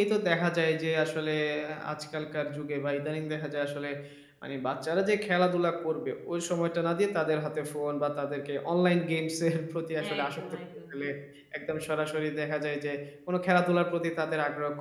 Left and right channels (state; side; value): identical; both; correlation 1.00